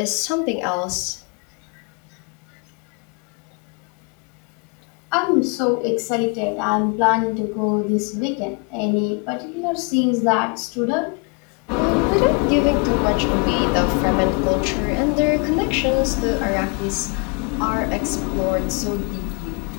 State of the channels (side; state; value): right; quieter; 34.1 dB